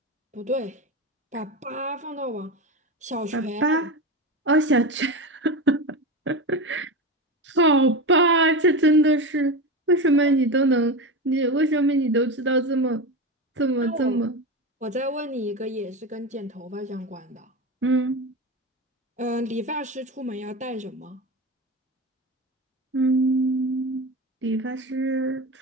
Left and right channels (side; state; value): both; normal; correlation 0.21